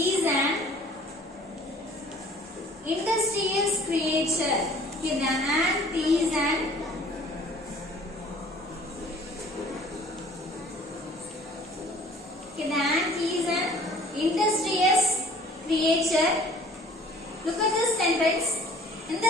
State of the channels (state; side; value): normal; both; correlation 0.52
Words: an industrious creature. Okay, the ant is an industrious creature. Look at this sentence. In